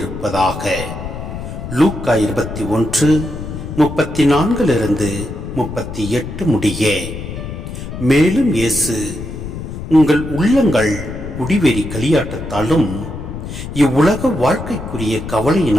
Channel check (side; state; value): left; noise; rumble, 8 dB below the sound